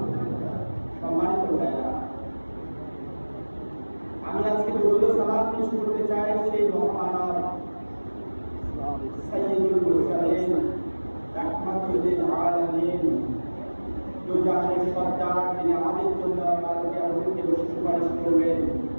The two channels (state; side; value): inverted; both; correlation -1.00